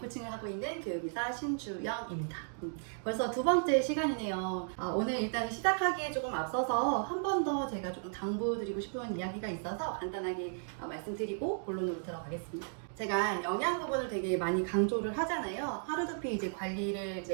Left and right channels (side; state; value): left; silent; digital silence